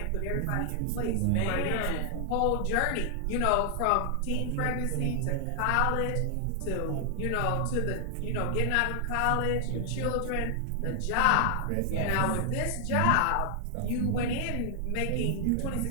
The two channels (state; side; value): different; both; correlation 0.00